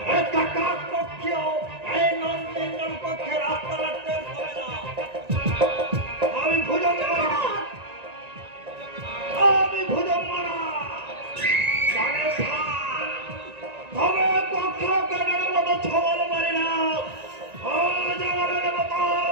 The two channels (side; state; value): left; late; 1.9 ms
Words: একটা কাক পক্ষেও এই নন্দিনীর পক্ষে রাস্তা রাখতে হবে না। আমি ভুজঙ্গমানা, আমি ভুজঙ্গমানা জানে তবে পক্ষ কেটের মতো ছবল মারি না। ও জগরের মতো